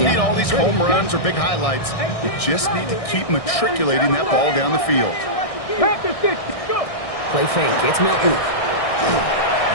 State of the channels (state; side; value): late; right; 1.6 ms